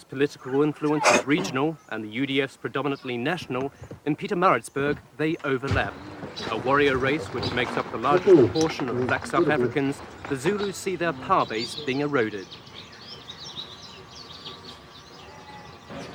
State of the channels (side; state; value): both; identical; correlation 1.00